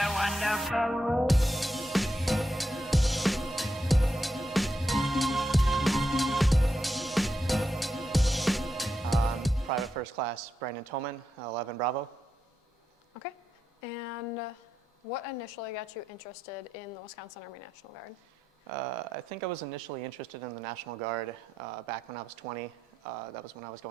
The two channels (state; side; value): normal; both; correlation 0.86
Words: wonderful. Private First Class Brandon Toman, 11 Bravo. Okay. And what initially got you interested in the Wisconsin Army National Guard? I think I was initially interested in the National Guard back when I was 20. That was when I was